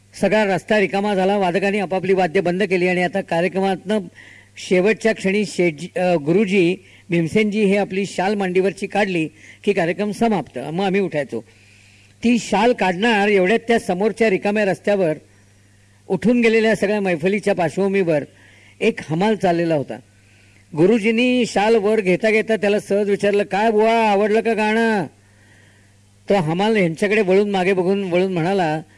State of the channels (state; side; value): identical; both; correlation 1.00